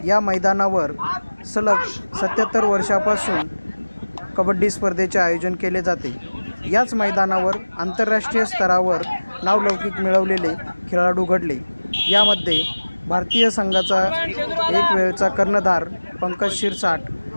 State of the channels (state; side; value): inverted; both; correlation -1.00